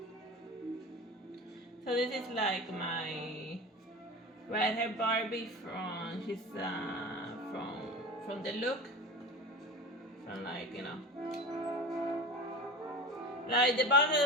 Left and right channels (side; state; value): both; normal; correlation 0.31